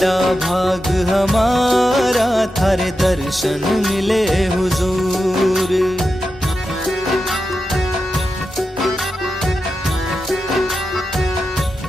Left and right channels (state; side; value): normal; both; correlation 0.90